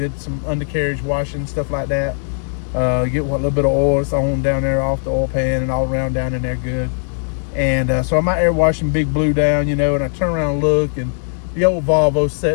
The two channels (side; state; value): right; silent; digital silence